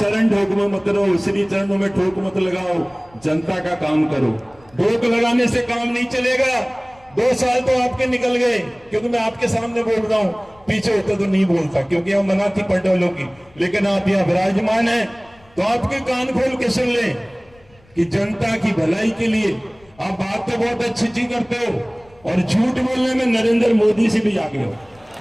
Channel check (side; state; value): left; noise; rumble, 29 dB below the sound